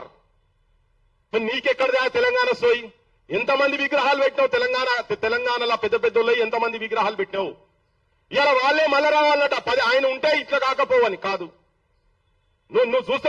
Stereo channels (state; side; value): identical; both; correlation 1.00